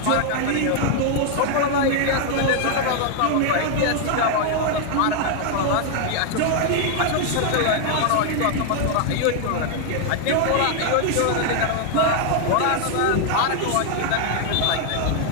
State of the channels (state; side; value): different; both; correlation 0.00